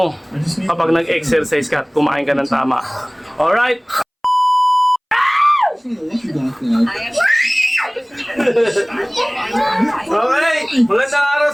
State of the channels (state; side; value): identical; both; correlation 1.00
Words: kapag nag-exercise ka at kumain ka ng tama. Alright? Okay, magandang araw